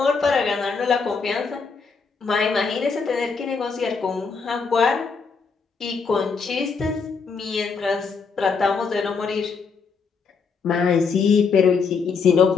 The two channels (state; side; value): quieter; right; 5.2 dB